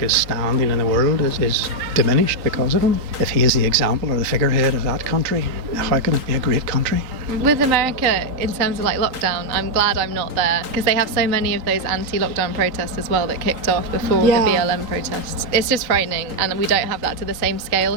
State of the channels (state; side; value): late; left; 3.8 ms